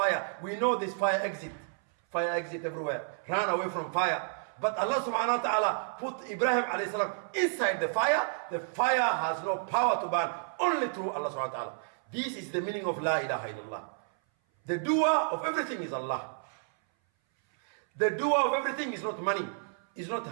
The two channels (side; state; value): left; silent; 57 dB below the other